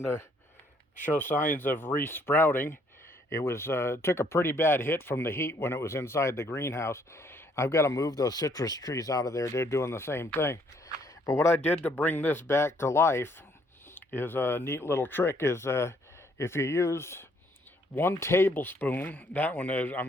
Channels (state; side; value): normal; both; correlation 0.66